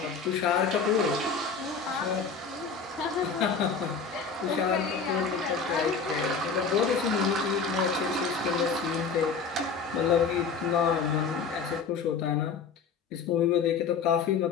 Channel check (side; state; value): right; quieter; 5.4 dB